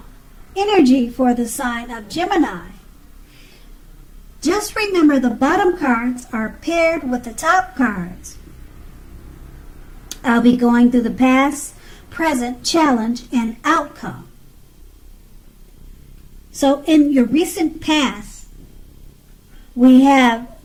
energy for the sign of Gemini? Just remember the bottom cards are paired with the top cards. I'll be going through the past, present, challenge, and outcome. So in your recent past, we have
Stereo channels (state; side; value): identical; both; correlation 1.00